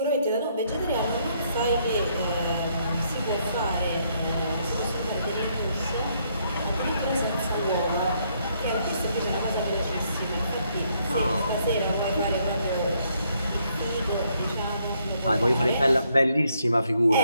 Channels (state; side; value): inverted; both; correlation -0.72